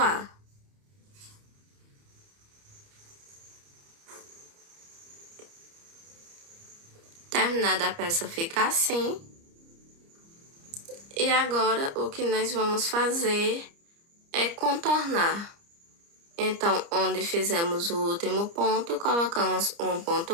Terminada a peça fica assim. E agora o que nós vamos fazer é contornar. Então, onde fizemos o último ponto, colocamos um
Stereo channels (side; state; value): left; late; 30 ms